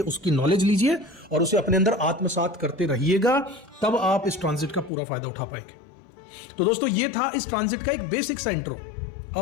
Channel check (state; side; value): drops out; right; at 4.9 s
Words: उसकी नॉलेज लीजिए और उसे अपने अंदर आत्मसात करते रहिएगा। तब आप इस ट्रांजिट का पूरा फायदा उठा पाएंगे। तो दोस्तों, ये था इस ट्रांजिट का एक बेसिक सा इंट्रो।